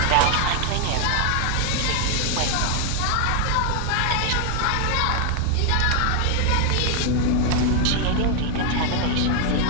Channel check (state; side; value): different; both; correlation 0.00